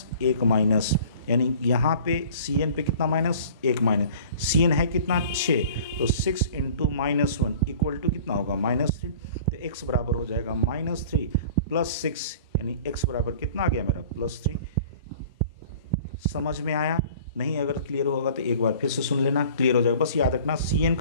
1 माइनस, यानी यहाँ पे CN पे कितना माइनस, 1 माइनस। CN है कितना, 6, तो 6 × -1 इक्वल टू कितना होगा, -3। तो X बराबर हो जाएगा -3 + 6, यानी X बराबर कितना आ गया मेरा, +3। समझ में आया नहीं, अगर क्लियर होगा तो एक बार फिर से सुन लेना, क्लियर हो जाएगा। बस याद रखना CN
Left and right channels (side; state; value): both; inverted; correlation -0.46